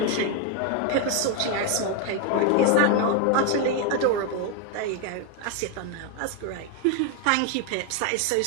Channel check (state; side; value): different; both; correlation 0.01